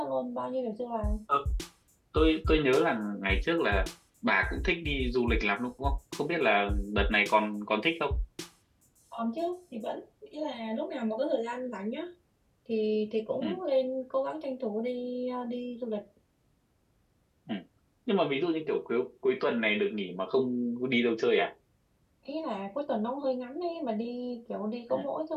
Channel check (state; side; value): identical; both; correlation 1.00